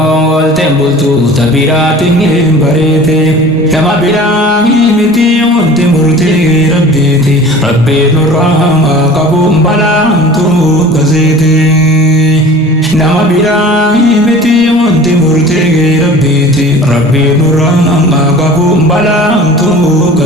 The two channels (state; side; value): normal; both; correlation 0.42